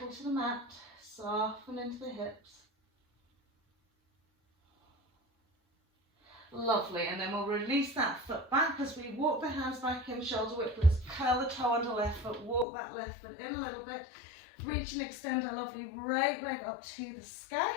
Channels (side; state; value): right; drops out; at 12.7 s